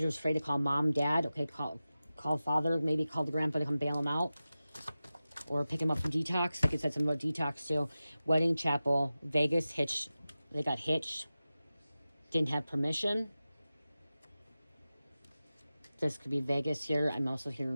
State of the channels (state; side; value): inverted; both; correlation -0.95